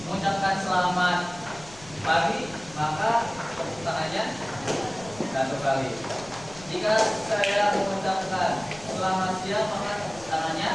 mengucapkan selamat pagi, maka tepuk tangannya 1 kali. Jika saya mengucapkan selamat siang, maka tepuk tangannya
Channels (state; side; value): noise; left; rumble, 20 dB below the sound